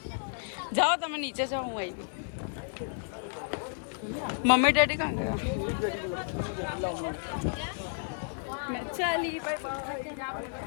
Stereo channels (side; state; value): right; silent; digital silence